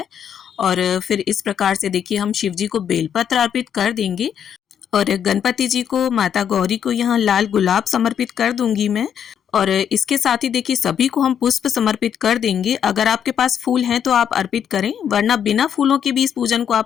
और फिर इस प्रकार से देखिए, हम शिव जी को बेलपत्र अर्पित कर देंगे और गणपति जी को, माता गौरी को यहाँ लाल गुलाब समर्पित कर दूंगी मैं। और इसके साथ ही देखिए, सभी को हम पुष्प समर्पित कर देंगे। अगर आपके पास फूल हैं तो आप अर्पित करें, वरना बिना फूलों के भी इस पूजन को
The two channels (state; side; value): quieter; right; 8.6 dB